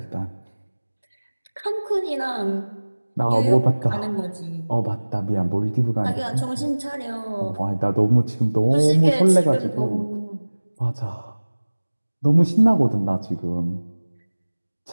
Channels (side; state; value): both; inverted; correlation -1.00